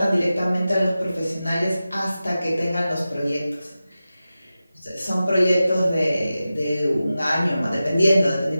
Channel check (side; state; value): both; inverted; correlation -0.94